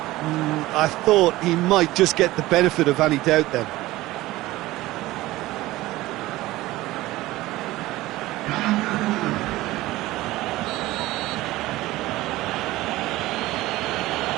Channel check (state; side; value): quieter; left; 17.8 dB